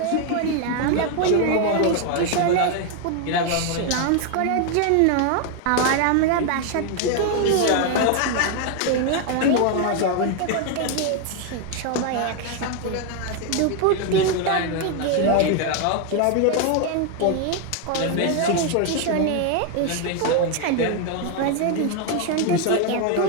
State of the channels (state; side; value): different; both; correlation 0.01